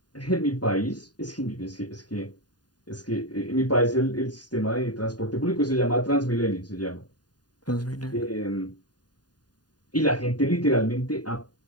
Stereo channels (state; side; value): late; right; 0.70 ms